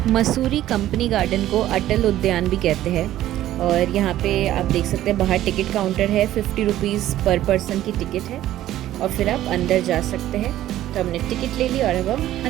Mussoorie company garden को अटल उद्यान भी कहते हैं। और यहाँ पे आप देख सकते हैं बाहर टिकट काउंटर है, 50 रुपीज़ पर पर्सन की टिकट है और फिर आप अंदर जा सकते हैं। तो हमने टिकट ले ली और अब हम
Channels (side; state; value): left; quieter; 13.5 dB